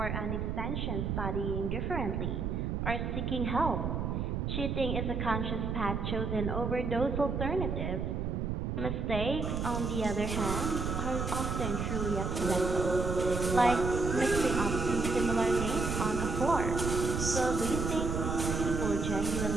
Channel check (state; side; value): noise; right; rumble, 1 dB below the sound